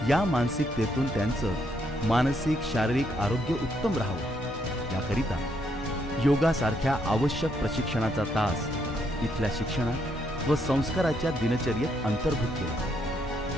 या मानसिकतेतून त्यांचं मानसिक शारीरिक आरोग्य उत्तम राहावं याकरिता योगासारख्या आवश्यक प्रशिक्षणाचा तास इथल्या शिक्षणात व संस्काराच्या दिनचर्येत अंतर्भूत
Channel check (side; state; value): both; normal; correlation 0.75